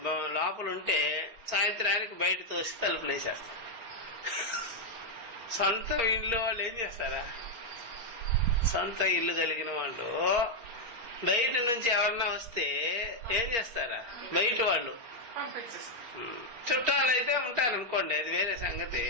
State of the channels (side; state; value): left; late; 4.2 ms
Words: లోపల ఉంటే సాయంత్రానికి బయట తోసి తలుపులు వేసేస్తాం. సొంత ఇల్లు వాళ్ళు ఏం చేస్తారా? సొంత ఇల్లు కలిగిన వాళ్ళు బయట నుంచి ఎవరన్నా వస్తే ఏం చేస్తారా? బయట వాళ్ళు చుట్టాలు అయితే ఉంటారు అనుకోండి, అది వేరే సంగతి.